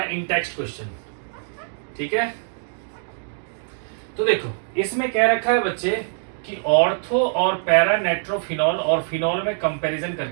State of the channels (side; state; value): left; silent; digital silence